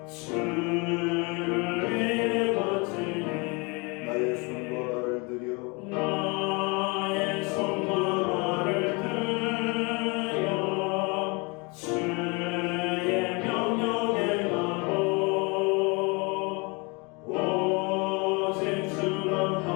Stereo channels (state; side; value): quieter; right; 29.6 dB